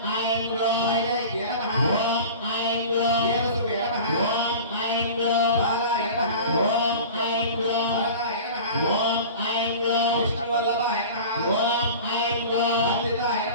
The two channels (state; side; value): inverted; both; correlation -0.38